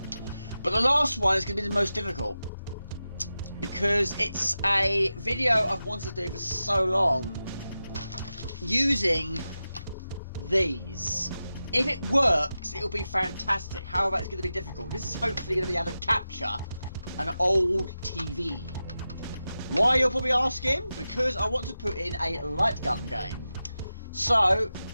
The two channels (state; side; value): inverted; both; correlation -0.92